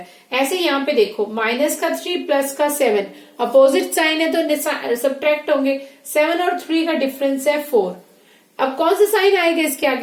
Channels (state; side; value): identical; both; correlation 1.00